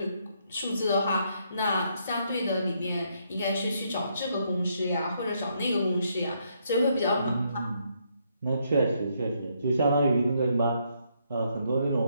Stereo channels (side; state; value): both; inverted; correlation -0.74